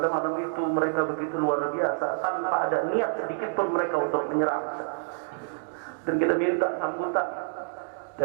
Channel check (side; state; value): left; silent; digital silence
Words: malam itu mereka begitu luar biasa, tanpa ada niat sedikit pun mereka untuk menyerang. Dan kita minta sambutan